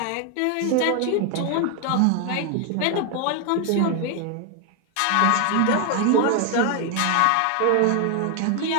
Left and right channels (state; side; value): different; both; correlation 0.01